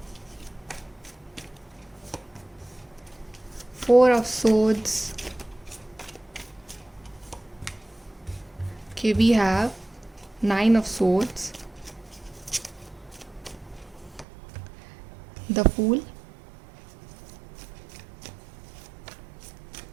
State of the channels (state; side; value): drops out; left; at 14.2 s